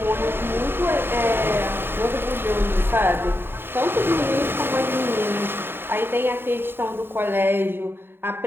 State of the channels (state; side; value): late; left; 0.11 ms